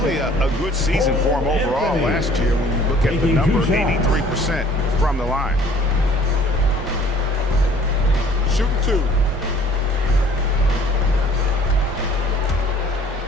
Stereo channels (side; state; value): both; normal; correlation 0.54